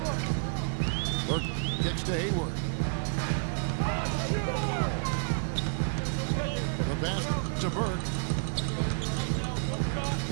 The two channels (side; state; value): left; silent; digital silence